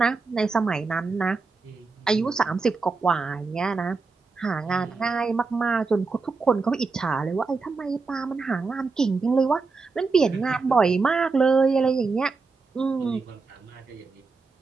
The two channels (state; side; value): quieter; left; 4.2 dB